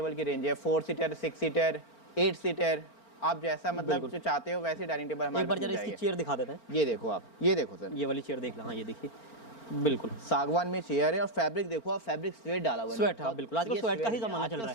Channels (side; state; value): right; late; 4.4 ms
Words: की रेंज है। 4 सीटर, 6 सीटर, 8 सीटर, आप जैसा मतलब जो चाहते हो वैसे डाइनिंग टेबल हमारे पास। एक बार जरा इसकी चेयर दिखा देते हैं। ये देखो आप, ये देखो सर, ये वाली चेयर देख लो। हाँ ये देखिए, बिल्कुल सागवान में चेयर है। और फैब्रिक देखो आप, फैब्रिक स्वेट डाला हुआ है। स्वेट, हाँ बिल्कुल, आजकल स्वेट का ही जमाना चल रहा